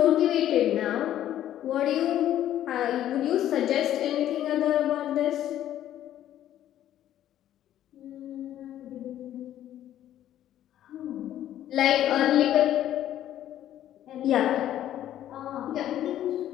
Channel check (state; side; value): quieter; right; 11.9 dB